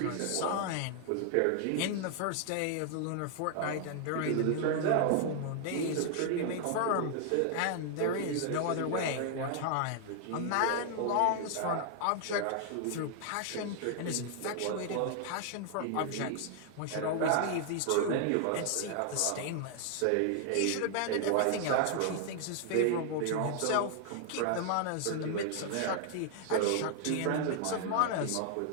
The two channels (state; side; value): different; both; correlation 0.00